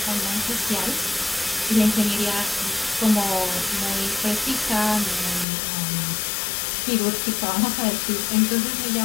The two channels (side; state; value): right; drops out; at 5.5 s